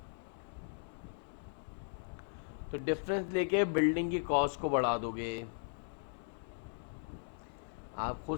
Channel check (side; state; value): right; silent; digital silence